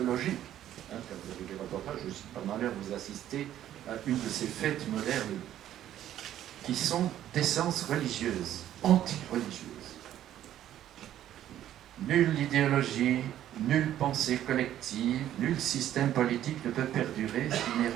Quand vous avez des reportages, je suis pas malheur, vous assistez à une de ces fêtes modernes qui sont d'essence religieuse, anti-religieuse. Nulle idéologie, nulle pensée collective, nul système politique ne peut perdurer s'il n'est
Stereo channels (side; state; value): left; quieter; 11.8 dB